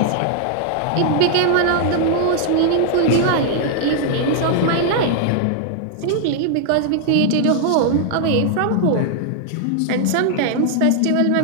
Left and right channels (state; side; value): different; both; correlation 0.00